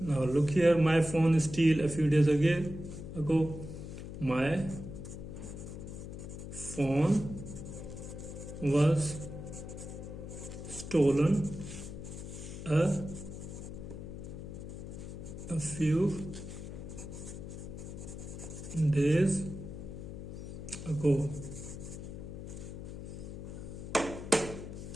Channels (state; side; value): noise; left; hum, 9 dB below the sound